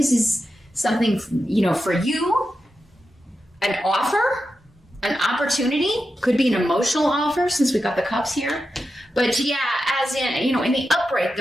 is something, for you, an offer, an opportunity, could be an emotional offer since we got the cups here. But yeah, as in, in the upright,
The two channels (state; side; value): normal; both; correlation 0.90